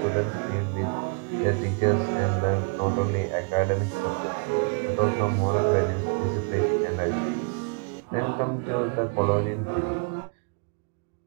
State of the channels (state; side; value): quieter; left; 36.5 dB